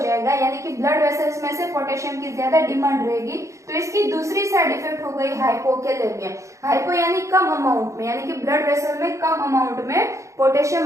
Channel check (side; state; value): left; late; 0.15 ms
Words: यानी कि ब्लड वेसल्स में से पोटेशियम की ज्यादा डिमांड रहेगी। तो इसकी दूसरी साइड इफेक्ट हो गई हाइपोकैलेमिया। हाइपो यानी कम अमाउंट में, यानी कि ब्लड वेसल में कम अमाउंट में पोटेशियम